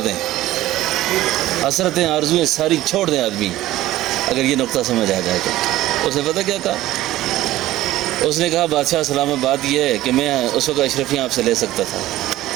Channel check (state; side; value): quieter; left; 15.5 dB